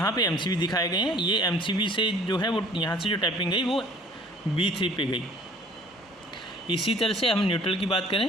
पे एमसीबी दिखाए गए हैं। ये एमसीबी से जो है वो यहाँ से जो टैपिंग गई वो B3 पे गई। इसी तरह से हम न्यूट्रल की बात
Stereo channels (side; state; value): both; normal; correlation 0.53